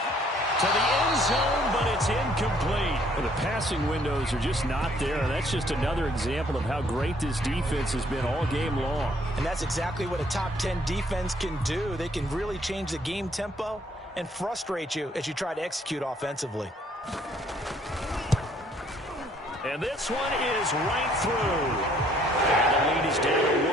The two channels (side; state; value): both; normal; correlation 0.63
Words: To the end zone, but it's incomplete. Well, the passing windows are just not there. And that's just another example of how great this defense has been all game long. And that's exactly what a top 10 defense can do. They can really change the game tempo and frustrate you as you try to execute offensively. And this one is right through. And the lead is down to